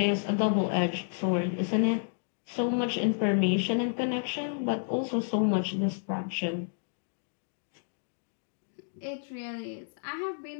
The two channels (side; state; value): right; silent; digital silence